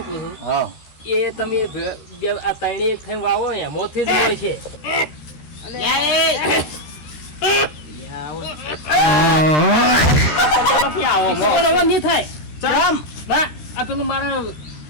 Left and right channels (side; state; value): right; late; 13 ms